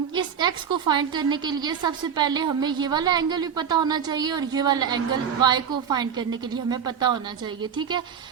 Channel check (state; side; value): quieter; left; 7.6 dB